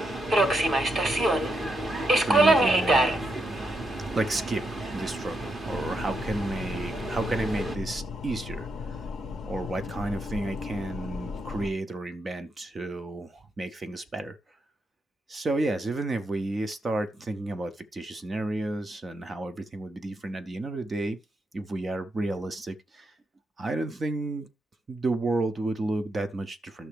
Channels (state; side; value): normal; both; correlation 0.81